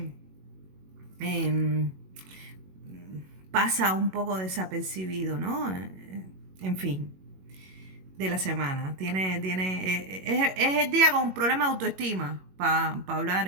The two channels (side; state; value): left; late; 21 ms